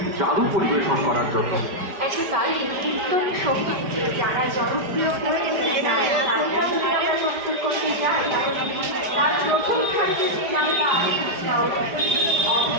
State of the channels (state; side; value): late; left; 4.9 ms